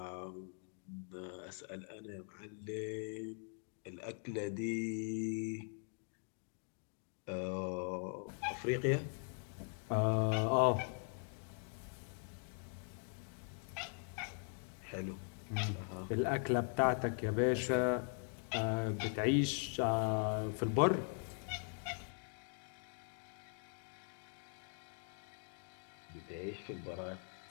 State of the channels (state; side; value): silent; right; 50 dB below the other